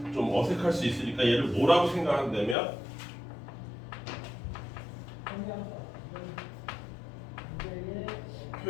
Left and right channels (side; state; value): right; drops out; at 2.6 s